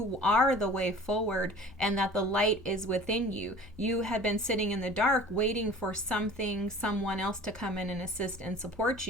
are the way forward and that the light is within you. You had been sitting in the dark waiting for someone else to come in and assist and support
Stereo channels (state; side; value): normal; both; correlation 0.43